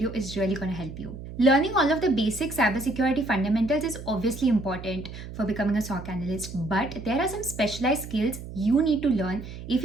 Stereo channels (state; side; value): noise; right; hum, 11 dB below the sound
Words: is really going to help you. Learning all of the basic cybersecurity fundamentals is obviously important for becoming a SOC analyst, but there are some specialized skills you need to learn if